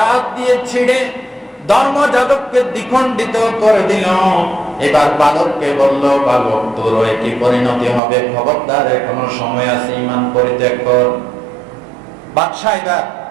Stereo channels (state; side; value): drops out; left; at 8.0 s